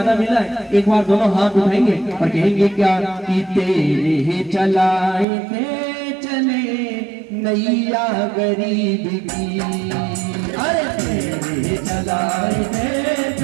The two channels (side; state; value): left; drops out; at 5.2 s